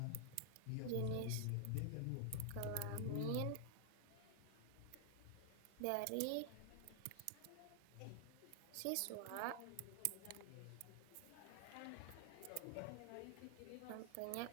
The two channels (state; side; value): different; both; correlation 0.00